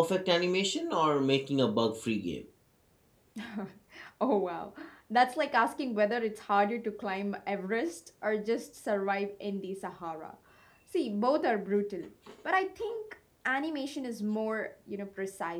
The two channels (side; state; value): both; identical; correlation 1.00